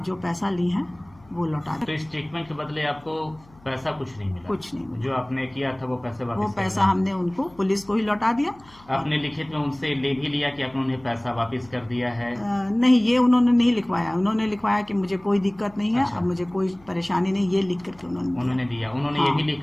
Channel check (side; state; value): left; noise; hum, 26 dB below the sound